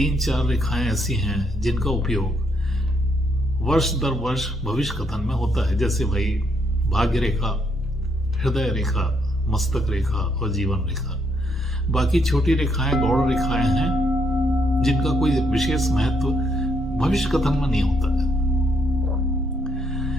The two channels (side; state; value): both; normal; correlation 0.74